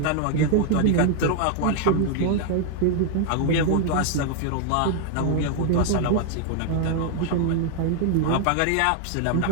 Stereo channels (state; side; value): different; both; correlation 0.00